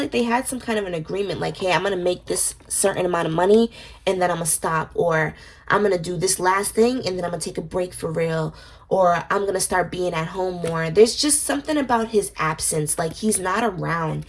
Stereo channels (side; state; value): both; identical; correlation 1.00